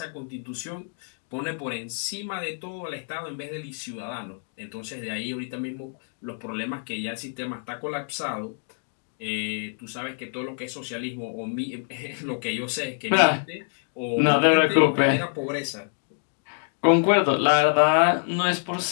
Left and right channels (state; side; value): silent; right; 61 dB below the other